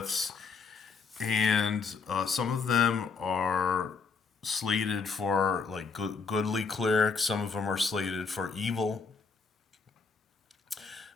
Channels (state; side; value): quieter; right; 4.9 dB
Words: and some of them are slated for like goodly clerics, some of them are slated for evil.